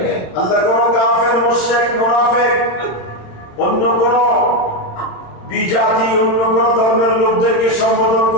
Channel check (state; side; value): late; right; 27 ms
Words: আল্লাহ কোন কাফের, মুশরিক, মুনাফিক, অন্য কোন বিজাতি, অন্য কোন ধর্মের লোকদেরকে সম্বোধন